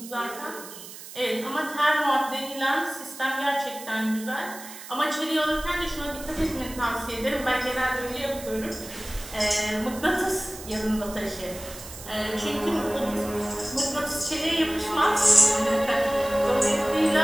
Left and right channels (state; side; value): noise; right; hiss, 14 dB below the sound